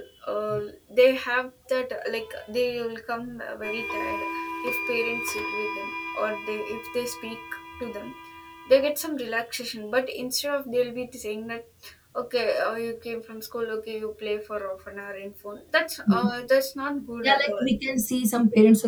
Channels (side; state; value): both; identical; correlation 1.00